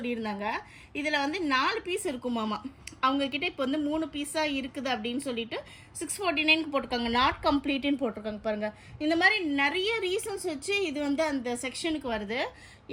இதில் வந்து 4 பீஸ் இருக்குமாமா. அவங்கக்கிட்ட இப்போ வந்து 3 பீஸாக இருக்குது அப்படின்னு சொல்லிட்டு 649க்கு போட்டிருக்காங்க. நாட் கம்ப்ளீட்டுன்னு போட்டிருக்காங்க பாருங்கள். இந்த மாதிரி நிறைய ரீசன்ஸ் வச்சு இது வந்து அந்த செக்ஷனுக்கு வருது.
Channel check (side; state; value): both; identical; correlation 1.00